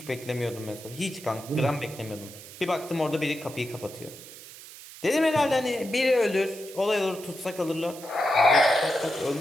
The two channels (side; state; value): right; noise; hiss, 16 dB below the sound